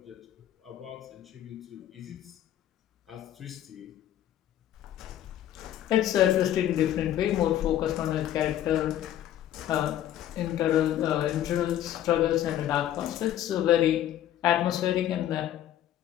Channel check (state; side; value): quieter; right; 11.8 dB